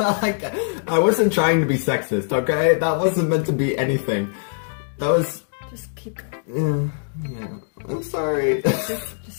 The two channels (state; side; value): silent; right; digital silence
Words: I wasn't trying to be sexist, okay? That wasn't meant to be anything. That was... Just keep going. yeah. I'm sorry.